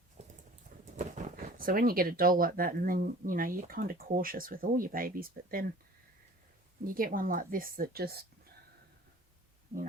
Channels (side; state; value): both; normal; correlation 0.45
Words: So when you get a doll like that, and then, you know, you're kind of cautious with all your babies, but then you get one like this that just, you